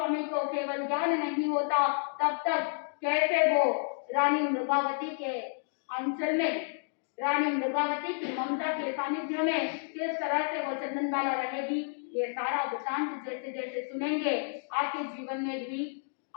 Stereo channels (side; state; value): right; silent; digital silence